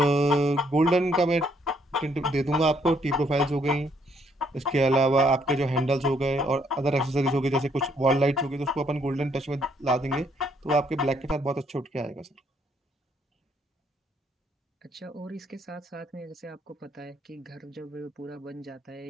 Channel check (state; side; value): normal; both; correlation 0.69